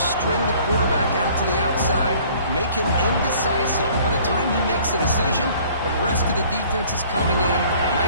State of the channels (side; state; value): both; inverted; correlation -0.54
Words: string the quarterback out to the outside, make him indecisive. By the time he makes a decision, the rest of the defense is coming in.